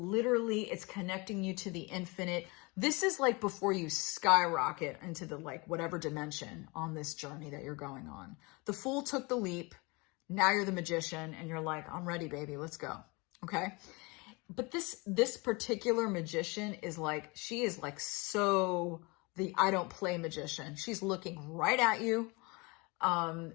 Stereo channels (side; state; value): right; quieter; 27.2 dB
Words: it's connecting you to the infinite. This is like before you skyrocket into the like whatever dimension on this journey that you're going on. The Fool took the leap. Now you're the magician and you're like, I'm ready, baby. Let's go. Okay. But this particular magician is like, she is like so the I don't play magician. She's looking right at you.